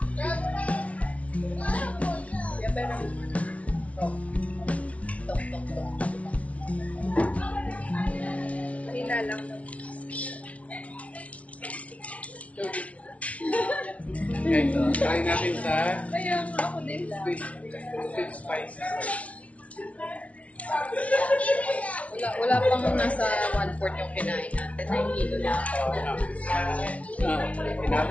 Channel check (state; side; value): late; right; 0.065 ms